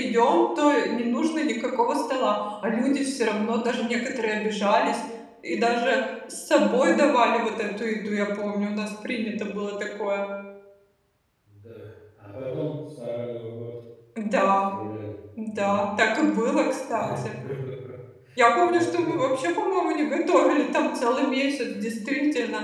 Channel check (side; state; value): both; identical; correlation 1.00